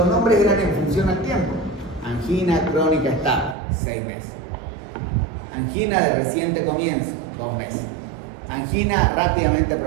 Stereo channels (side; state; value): left; drops out; at 3.6 s